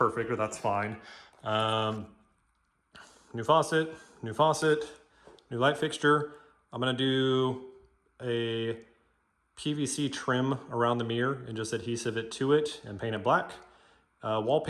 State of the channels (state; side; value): identical; both; correlation 1.00